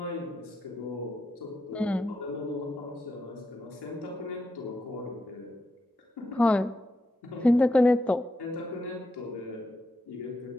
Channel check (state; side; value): normal; both; correlation 0.84